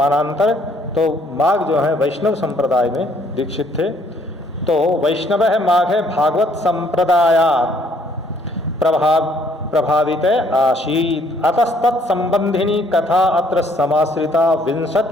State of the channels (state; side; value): normal; both; correlation 0.65